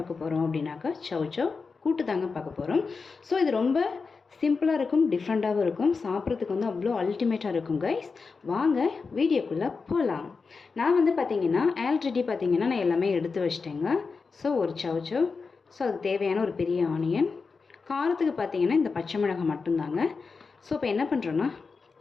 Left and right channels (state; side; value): quieter; right; 4.7 dB